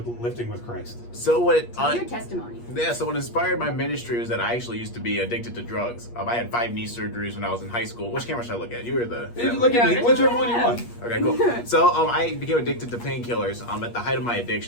lifting with Christ? So what? Tell your testimony. Yeah, so what inspired my ministry was that I actually used to be addicted to drugs. I had 5 knee surgeries when I was in high school. Which camera should I look at? You were the... Look at me, Yeah, whichever one you want. Okay, cool. So I became addicted to painkillers. At the height of my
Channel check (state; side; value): late; right; 8.4 ms